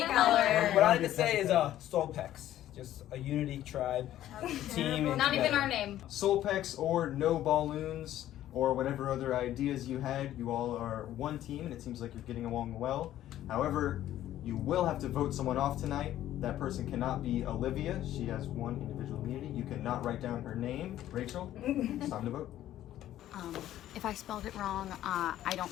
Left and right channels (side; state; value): right; quieter; 12.9 dB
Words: color. What I like to say is Solpex, just a unity tribe, team. And Not even together. our name. Solpex or No Balloons or whatever other ideas you had, you all are one team and it seems like you're getting along well. However, you will have to vote someone off tonight. That person cannot be Olivia. She has 1 individual immunity. You cannot write down her name. Rachel, it's time to vote. If I spelled it wrong, I